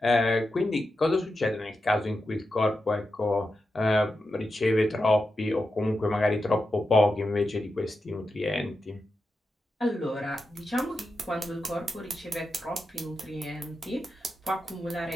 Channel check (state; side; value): normal; both; correlation 0.89